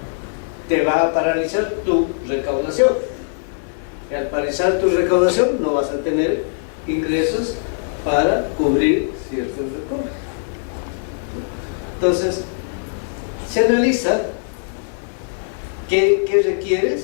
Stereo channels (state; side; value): silent; right; digital silence